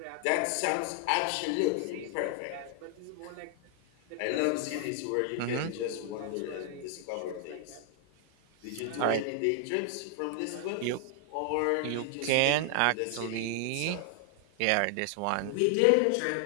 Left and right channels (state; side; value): different; both; correlation 0.00